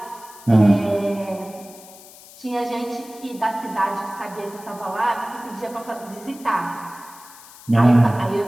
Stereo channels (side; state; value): left; noise; hiss, 20 dB below the sound